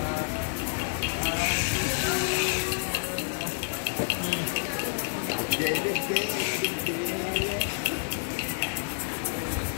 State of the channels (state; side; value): silent; right; digital silence